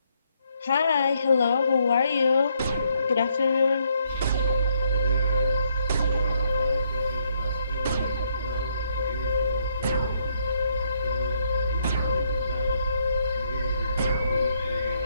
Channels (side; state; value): both; inverted; correlation -0.73